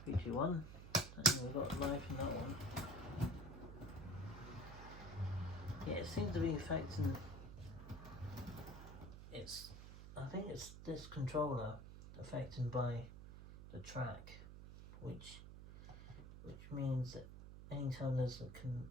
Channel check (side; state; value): right; noise; hum, 12 dB below the sound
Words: 3, 2, 1, and we've got life in that one. Yeah, it seems to be affecting. I think it's this controller affected by the track, which means that anytime there's a